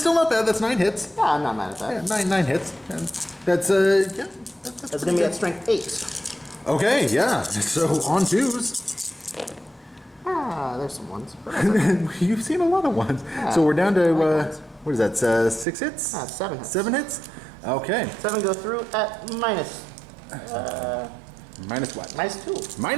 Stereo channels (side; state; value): left; drops out; at 15.7 s